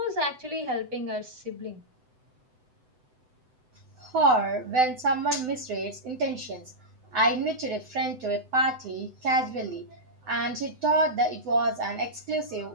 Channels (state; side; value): late; left; 7.9 ms